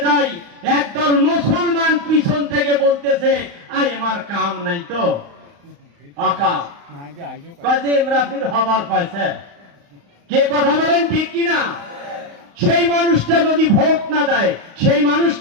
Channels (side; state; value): left; late; 35 ms